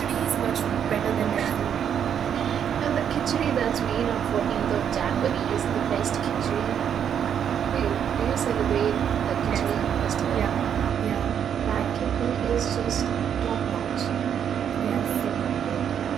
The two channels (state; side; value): quieter; left; 8.6 dB